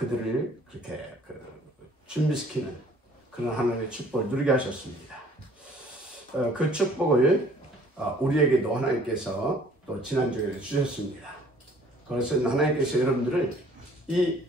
그렇게 준비시키는 그런 하나님의 축복을 누리게 하셨습니다. 그 축복을 우리에게도 하나님께서 또 지난주에 주셨습니다. 그래서 하나님께서 여러분들을 이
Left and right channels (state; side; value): normal; both; correlation 0.55